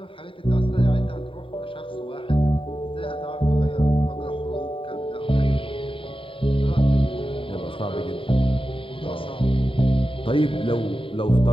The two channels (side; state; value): right; late; 0.25 ms